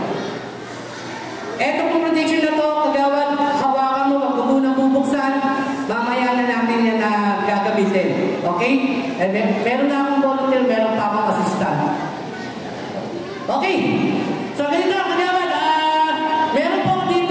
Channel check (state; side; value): identical; both; correlation 1.00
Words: Eto pong prediction na to, Kagawad, hawakan mo, wag mo munang bubuksan, mamaya na natin yan na gagamitin. Okay? Meron na akong volunteer, meron pa akong assistant. Okay. So, ganito, Kagawad, meron po